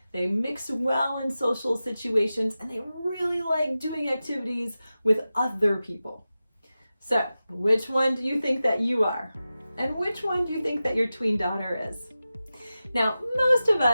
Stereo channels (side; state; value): both; inverted; correlation -0.94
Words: They mix well in social situations and they really like doing activities with other people. So, which one do you think that you are? And which one do you think that your tween daughter is? Now, most of